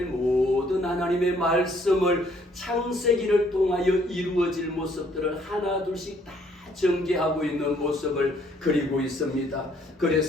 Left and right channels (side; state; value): both; normal; correlation 0.65